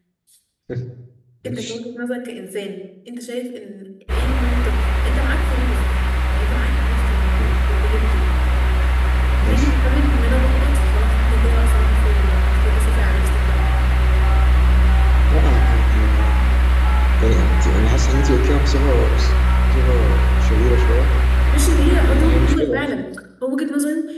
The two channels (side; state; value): both; identical; correlation 1.00